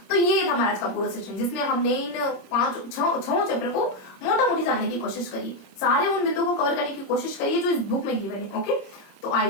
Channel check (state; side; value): late; right; 26 ms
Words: तो ये था हमारा आज का पूरा सेशन, जिसमें हमने इन 6 चैप्टर को मोटा मोटी जानने की कोशिश करी, सारे उन बिंदुओं को कवर करने की कोशिश करी जो इस बुक में गिवन है। ओके, तो आई